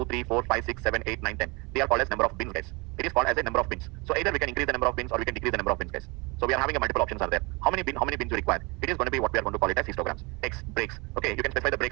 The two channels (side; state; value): left; quieter; 27.4 dB